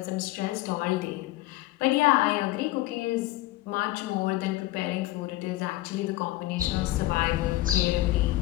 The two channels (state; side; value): quieter; right; 17.4 dB